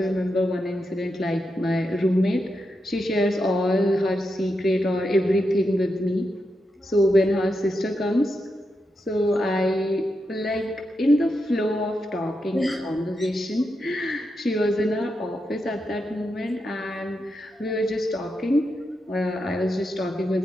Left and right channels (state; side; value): normal; both; correlation 0.86